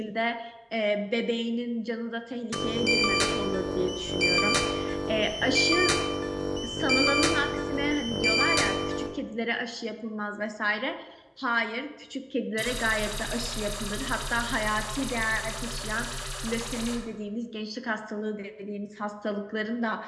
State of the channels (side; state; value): both; identical; correlation 1.00